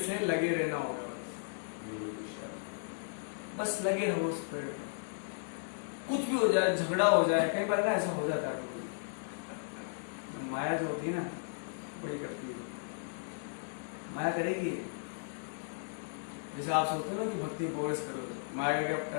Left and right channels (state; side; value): silent; right; digital silence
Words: लगे रहना होगा, बस लगे रहो उस पेड़ पर। कुछ भी हो जाए, झगड़ा हो जाए, कई बार ना ऐसा हो जाता है, माया जो होती है ना बड़ी करती है, माया करेगी। जैसे आप सोचते हो ना कि भक्ति प्रोग्रेस करो, माया का क्या